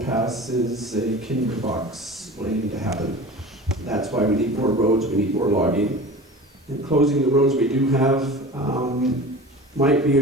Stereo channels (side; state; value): both; normal; correlation 0.36